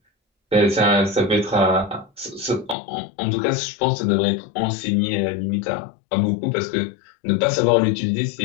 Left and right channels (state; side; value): drops out; right; at 2.8 s